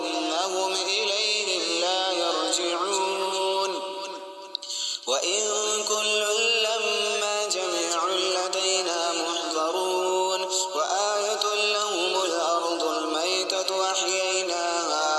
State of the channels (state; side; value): identical; both; correlation 1.00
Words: إليهم لا يرجعون وإن كل لما جميع لدينا محضرون وآية لهم الأرض الميتة